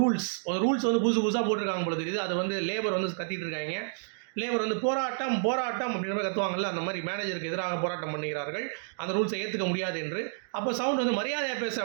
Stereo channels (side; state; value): left; silent; digital silence